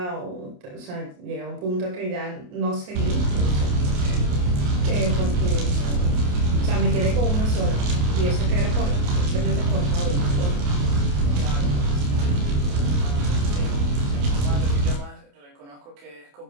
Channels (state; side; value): late; left; 28 ms